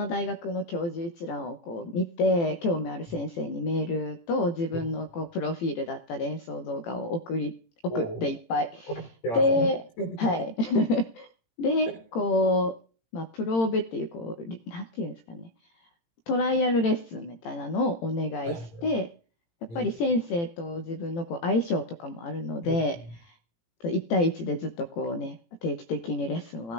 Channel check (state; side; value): late; right; 18 ms